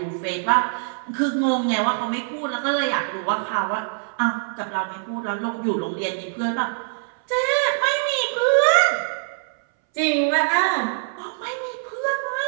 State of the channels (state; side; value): silent; left; 63 dB below the other